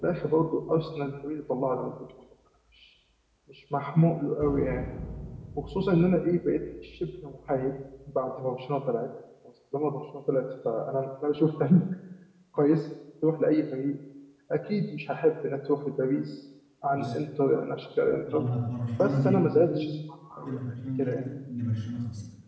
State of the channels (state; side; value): identical; both; correlation 1.00